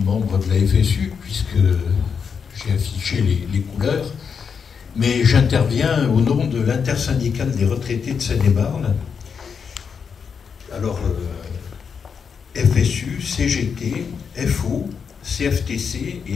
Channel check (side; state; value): right; quieter; 6.3 dB